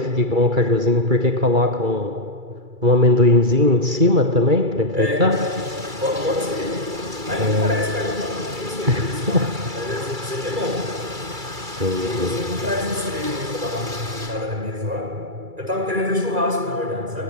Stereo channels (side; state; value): left; late; 2.3 ms